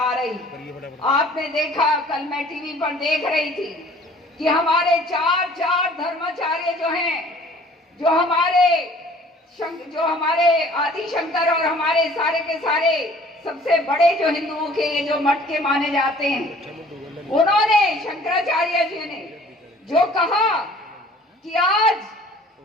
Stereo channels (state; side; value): normal; both; correlation 0.52